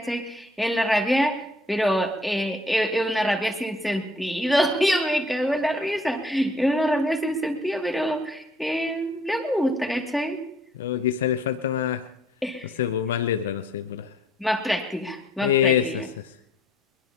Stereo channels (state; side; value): normal; both; correlation 0.60